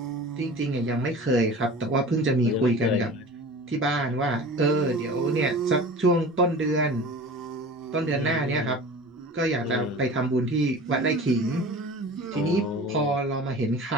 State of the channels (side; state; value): both; normal; correlation 0.38